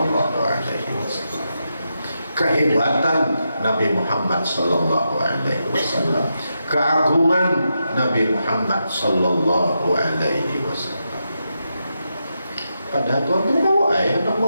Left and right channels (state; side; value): inverted; both; correlation -0.86